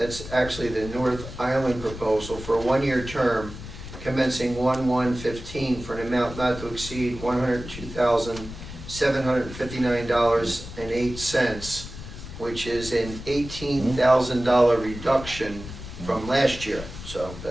actually the North Island proposal for a one-year term commencing 1/1/15 for an amount not to exceed $102,759.08, which is an $18,000 reduction from last year. So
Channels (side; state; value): left; noise; rumble, 12 dB below the sound